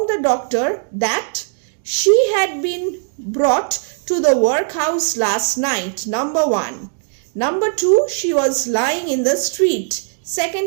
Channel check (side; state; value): left; silent; digital silence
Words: the doctor that she had been brought to the workhouse last night. Number 1. Number 2, she was lying in the street.